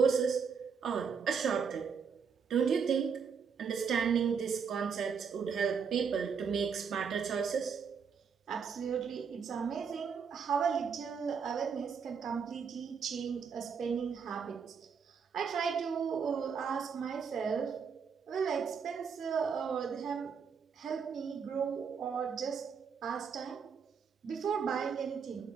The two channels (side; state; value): left; quieter; 6.3 dB